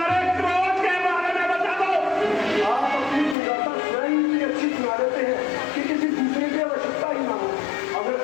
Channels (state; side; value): drops out; right; at 3.4 s